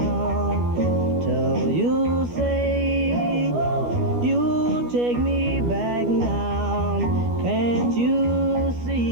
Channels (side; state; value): left; late; 12 ms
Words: Till you say you take me back now. Can't you